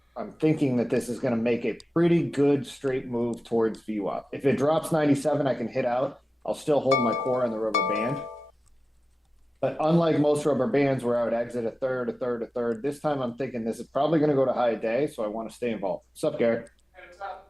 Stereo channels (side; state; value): both; normal; correlation 0.95